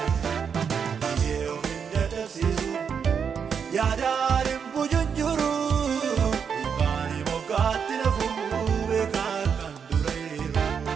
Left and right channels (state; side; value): quieter; left; 6.8 dB